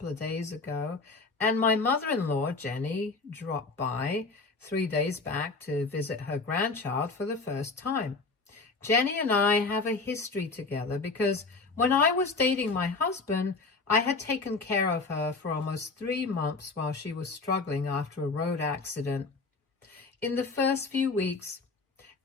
of days ago, and my mother-in-law, Jenny, dropped by 3 days back to visit her grandchild for the first time. Jenny and I have a history together because when I was dating my husband, I had taken care of her for almost 3 months while she was struggling after a road accident. In the first few weeks,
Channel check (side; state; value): right; quieter; 3.9 dB